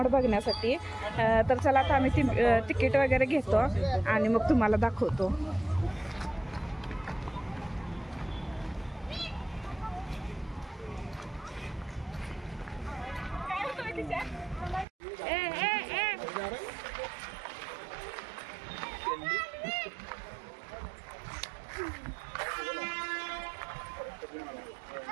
बघण्यासाठी. तर चला आता आम्ही तिकीट वगैरे घेतो आणि मग तुम्हाला दाखवतो.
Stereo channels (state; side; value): drops out; left; at 14.9 s